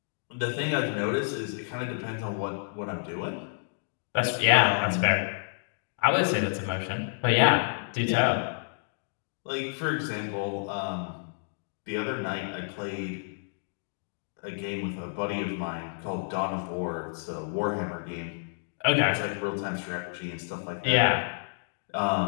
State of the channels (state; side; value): silent; right; digital silence